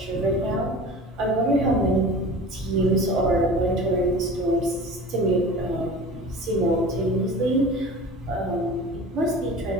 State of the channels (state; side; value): normal; both; correlation 0.38